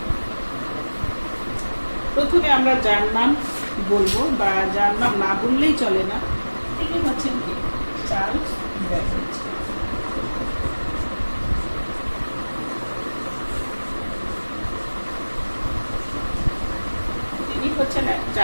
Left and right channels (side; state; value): both; inverted; correlation -1.00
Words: প্রথমে আমরা যার নাম বলবো বা যার নাম না বললেই চলে না, তিনি হচ্ছেন কি? Charles Babbage. হচ্ছেন